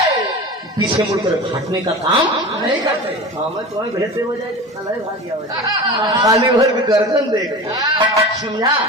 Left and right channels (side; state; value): both; normal; correlation 0.32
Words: पीछे मुड़कर हटने का काम नहीं करते मैं तुम्हें भेजते हो जाए खाली भर के गर्दन देख समझा